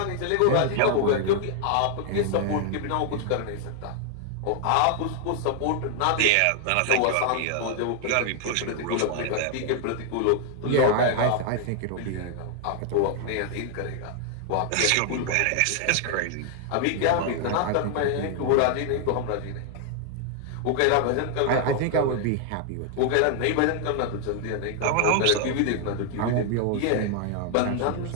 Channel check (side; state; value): both; different; correlation 0.00